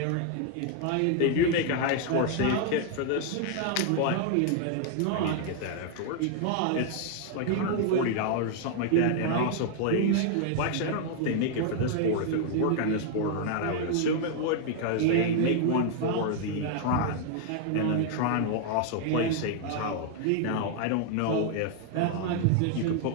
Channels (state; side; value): different; both; correlation 0.00